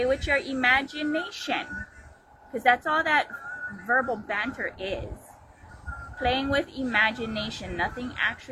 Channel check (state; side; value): identical; both; correlation 1.00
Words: with your imagination. Because that's all that verbal banter is. Playing with imagination. Nothing